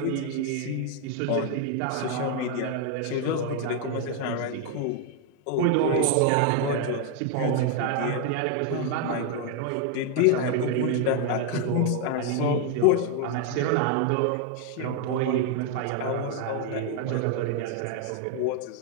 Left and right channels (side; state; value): both; different; correlation 0.01